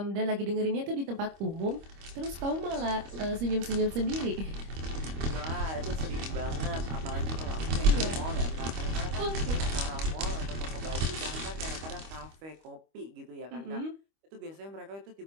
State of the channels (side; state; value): left; late; 25 ms